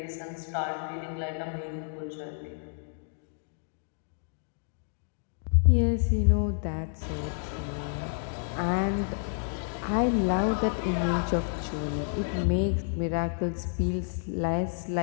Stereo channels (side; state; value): right; silent; digital silence